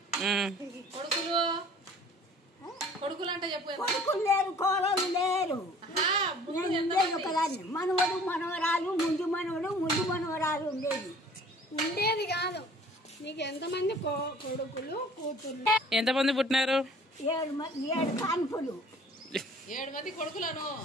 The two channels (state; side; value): normal; both; correlation 0.51